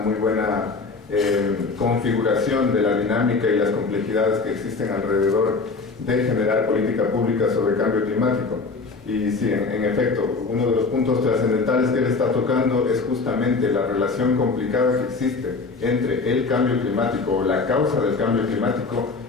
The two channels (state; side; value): quieter; right; 4.1 dB